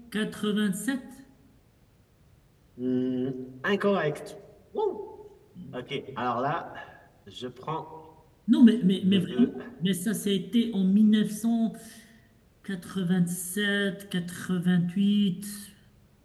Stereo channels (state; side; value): identical; both; correlation 1.00